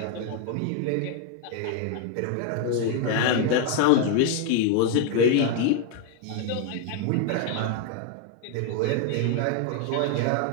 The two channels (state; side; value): different; both; correlation 0.01